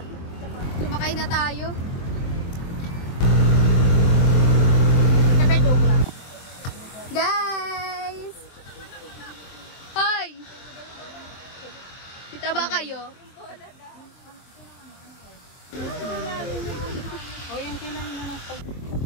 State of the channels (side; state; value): right; late; 23 ms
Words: Sumakay na tayo. Guys! Hoy! Kita ba kayo? O yan kailangan na lang pag...